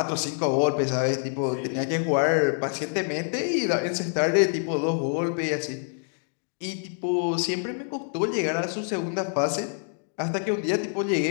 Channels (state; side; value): silent; right; 60 dB below the other